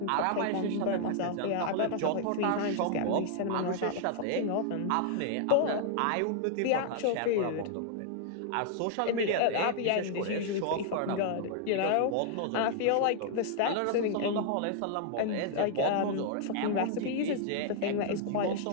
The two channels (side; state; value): both; different; correlation -0.01